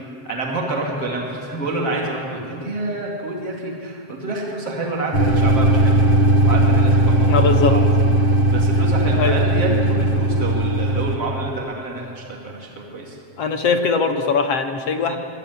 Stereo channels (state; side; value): late; right; 7.6 ms